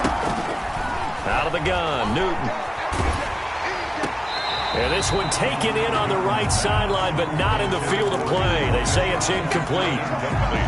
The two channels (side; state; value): both; identical; correlation 1.00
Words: Out of the gun, Newton. And this one taken in on the right sideline, but not in the field of play. They say it's incomplete.